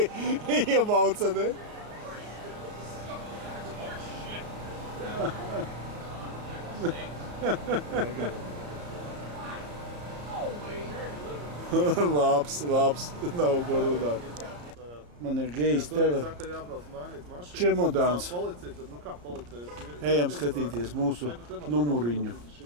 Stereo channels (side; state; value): left; late; 34 ms